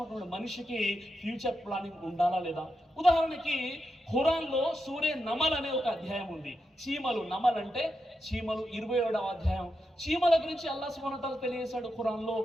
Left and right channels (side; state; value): both; normal; correlation 0.87